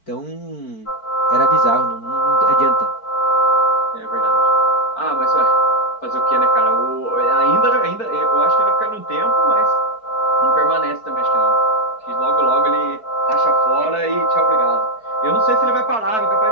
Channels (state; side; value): late; right; 4.5 ms